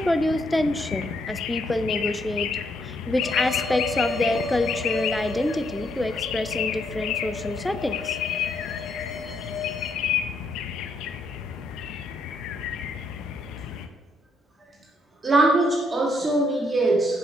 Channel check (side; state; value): both; normal; correlation 0.73